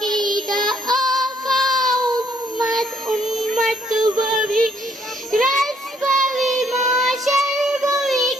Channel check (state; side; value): normal; both; correlation 0.68